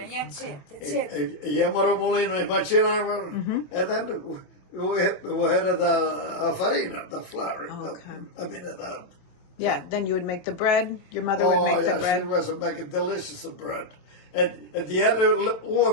That's it. That's it. E chiamano mulino e maceravano, e then we had the farina, the flour. Okay. I mean, the... Yeah, then you would make the bread. Your mother would make the bread. She was making delicious bread. And the other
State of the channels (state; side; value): late; right; 27 ms